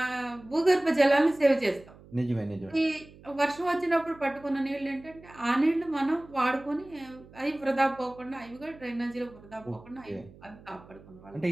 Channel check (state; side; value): noise; right; hum, 22 dB below the sound